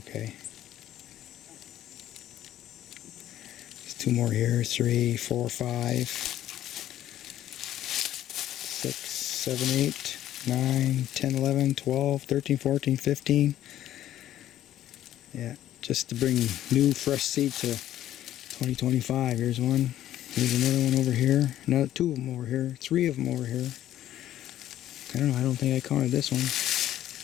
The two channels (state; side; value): quieter; right; 12.5 dB